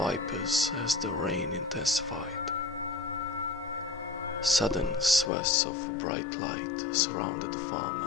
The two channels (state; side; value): drops out; right; at 5.3 s